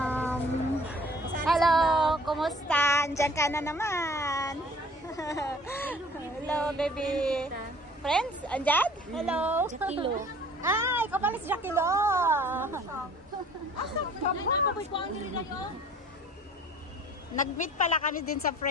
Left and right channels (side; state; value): both; normal; correlation 0.51